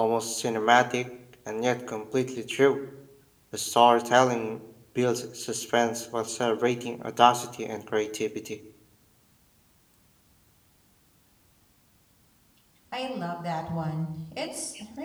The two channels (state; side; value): identical; both; correlation 1.00